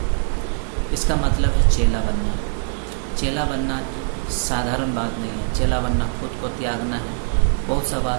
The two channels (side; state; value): left; silent; digital silence